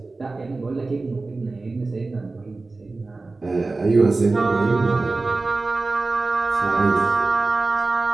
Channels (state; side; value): quieter; left; 3.5 dB